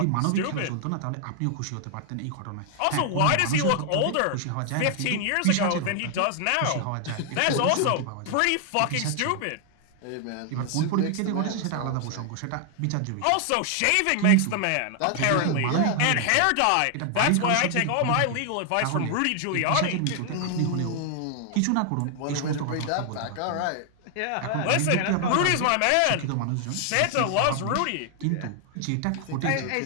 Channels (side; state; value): both; different; correlation 0.00